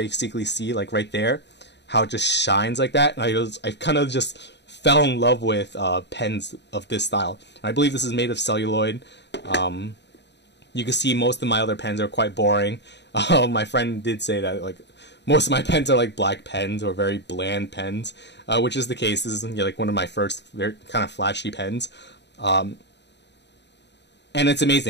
see, like right there, how it just shines like that. And I kind of just fell in love with pens of this style. And I believe this is made of celluloid. You can see most of my other pens are quite boring. My friend did say that like most of my pens are like black pens or very bland pens, which is the case. This is like one of my first very kind of flashy pens, and it's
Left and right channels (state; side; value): late; right; 0.50 ms